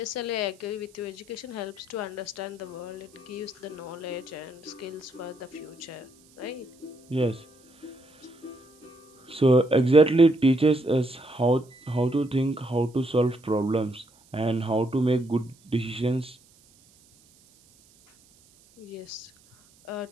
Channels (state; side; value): noise; right; hiss, 29 dB below the sound